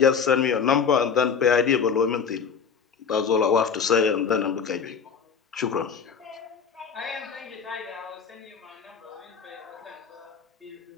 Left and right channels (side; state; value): right; quieter; 6.3 dB